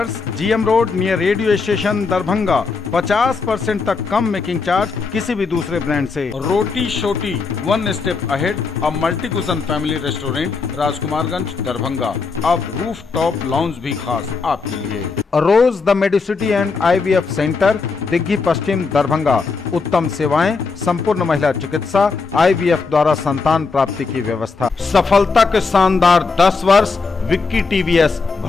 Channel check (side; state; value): right; quieter; 4.6 dB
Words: GM road near radio station Darbhanga. 50% तक कम मेकिंग चार्ज किसी भी दूसरे ब्रांड से। Roti Shoti, one step ahead, a multi cuisine family restaurant, Rajkumarganj Darbhanga. अब रूफ टॉप लॉन्ज भी खास आपके लिए। Rose the medicity and IVF centre, Digghi Paschim Darbhanga. उत्तम सेवाएं, संपूर्ण महिला चिकित्सा, IVF द्वारा संतान प्राप्ति की व्यवस्था। सफलता के शानदार 10 वर्ष। Vicky TVS,